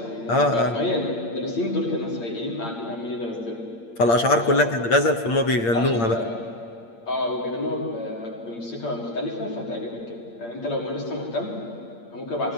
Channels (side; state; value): right; late; 8.7 ms